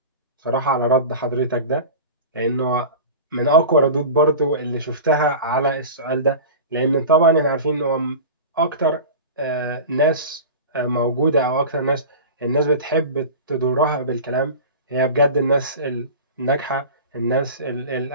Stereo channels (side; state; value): both; inverted; correlation -0.33